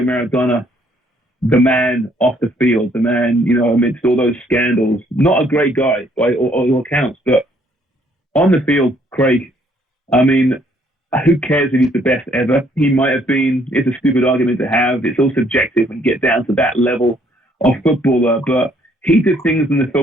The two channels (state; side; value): normal; both; correlation 0.66